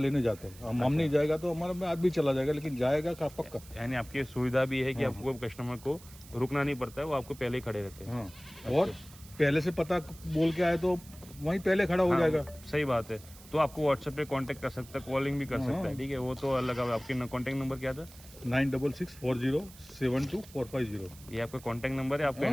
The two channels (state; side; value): noise; right; hiss, 20 dB below the sound